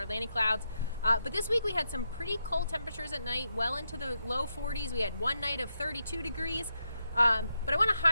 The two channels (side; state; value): both; inverted; correlation -0.84